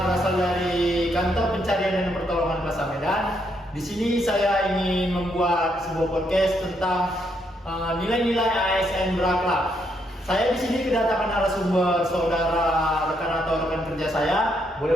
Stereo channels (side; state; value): both; normal; correlation 0.75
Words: berasal dari Kantor Pencarian dan Pertolongan Plaza Medan. Di sini saya ingin membuat sebuah podcast tentang nilai-nilai ASN berakhlak. Saya di sini kedatangan narasumber saudara, rekan atau rekan kerja saya.